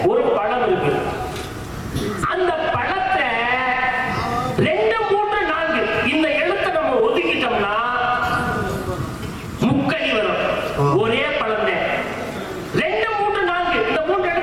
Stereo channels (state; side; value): identical; both; correlation 1.00